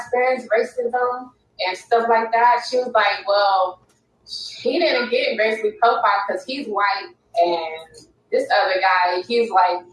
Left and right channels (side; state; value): both; identical; correlation 1.00